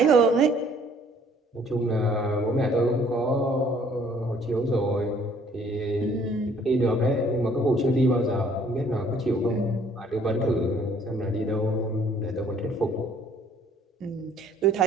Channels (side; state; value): both; normal; correlation 0.59